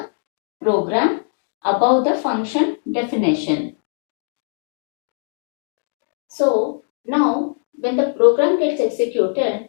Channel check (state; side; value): silent; right; digital silence